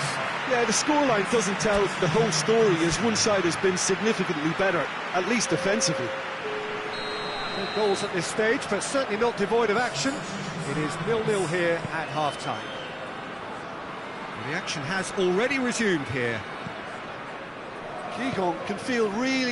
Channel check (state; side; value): identical; both; correlation 1.00